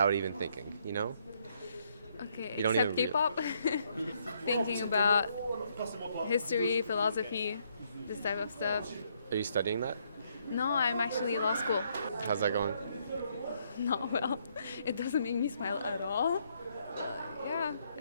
even thinking, you know? Okay, You don't except even K-pop. Thinking about history, philosophy, this type of stuff. Are you studying that? No, I'm actually in law school. How's that going? Not well. It doesn't make me smile at all. Yeah,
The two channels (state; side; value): inverted; both; correlation -0.72